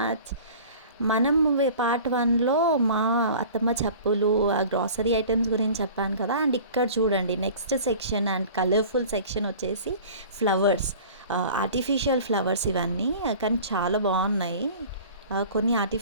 మనం part 1లో మా అత్తమ్మ చెప్పులు ఆ గ్రాసరీ ఐటమ్స్ గురించి చెప్పాను కదా. అండ్ ఇక్కడ చూడండి next section and colourful section వచ్చేసి ఫ్లవర్స్, ఆర్టిఫిషియల్ ఫ్లవర్స్ ఇవన్నీ. కానీ చాలా బాగున్నాయి. కొన్ని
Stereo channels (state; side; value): inverted; both; correlation -0.43